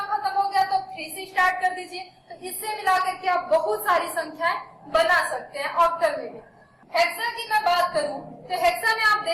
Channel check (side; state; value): both; identical; correlation 1.00